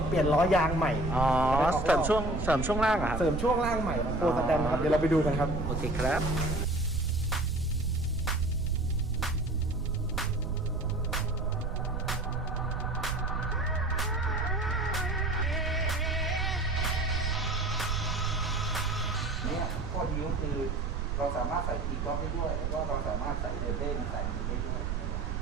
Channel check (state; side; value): noise; right; rumble, 2 dB below the sound